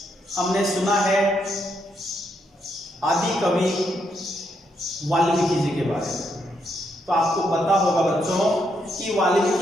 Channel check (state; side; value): normal; both; correlation 0.78